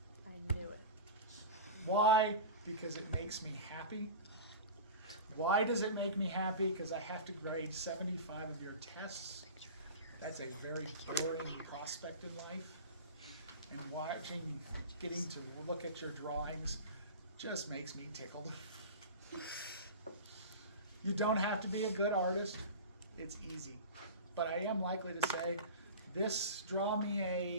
I knew it. Why? Because it makes me happy. Why does it make me happy? Because I have to grade 75 of your tests. That's a very boring prospect in life. And getting to look at your drawings just makes me tickled. You don't have to be a good artist. It's easy. But I am likely to say, draw me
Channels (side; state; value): both; inverted; correlation -0.31